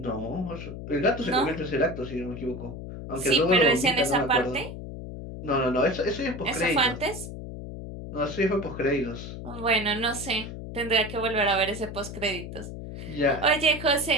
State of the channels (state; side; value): noise; left; hum, 9 dB below the sound